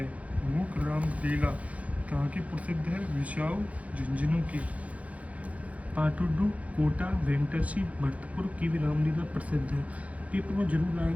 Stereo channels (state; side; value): late; left; 0.067 ms